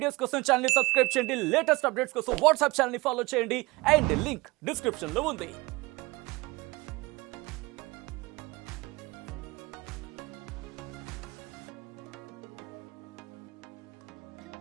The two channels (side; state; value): left; quieter; 22.9 dB